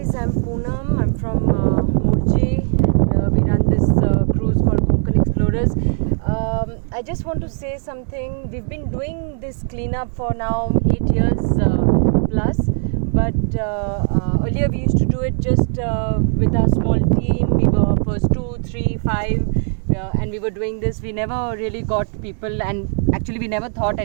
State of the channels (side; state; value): left; silent; 56 dB below the other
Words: I'm Poonam. I'm from Murji and we run this cruise called Konkan Explorers. I just want to say something. We've been doing this cleanup for now 8 years plus, but earlier we used to do it just with our small team. We were first 2, 3, 5 and we were doing this. We never really got people, and actually we never thought